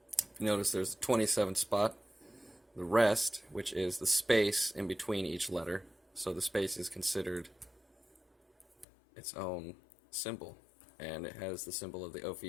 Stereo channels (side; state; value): right; drops out; at 8.8 s